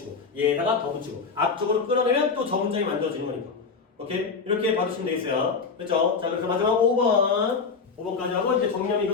얘다가 더 붙이고 앞쪽으로 끌어내면 또 저 문장이 만들어지는 거니까. 오케이? 이렇게 봐주시면 되겠어요. 그렇죠? 자, 그래서 마지막 5번까지 하고 이제 정리하면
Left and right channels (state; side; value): quieter; right; 5.0 dB